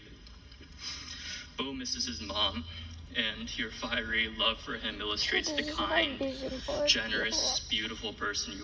Bo misses his mom, and your fiery love for him illustrates the This is my kind, vision board. generous, beautiful person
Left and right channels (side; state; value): both; identical; correlation 1.00